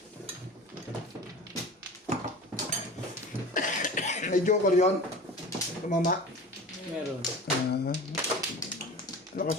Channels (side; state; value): both; normal; correlation 0.36